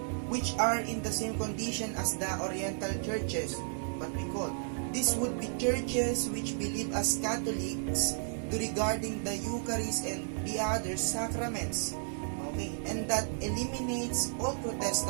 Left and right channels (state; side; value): silent; left; digital silence